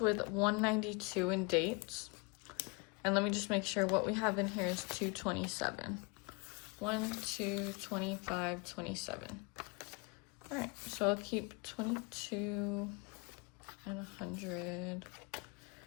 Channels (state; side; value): quieter; right; 30.9 dB